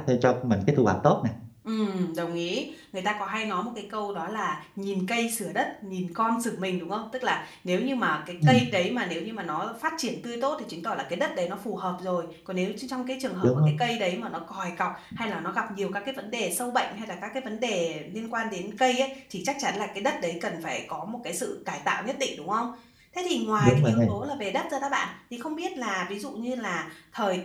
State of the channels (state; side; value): identical; both; correlation 1.00